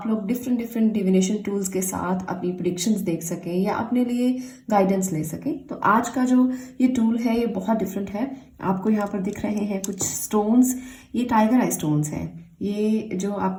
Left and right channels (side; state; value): both; identical; correlation 1.00